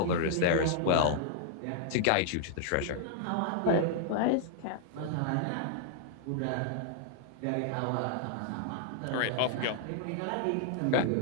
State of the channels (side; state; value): both; different; correlation -0.01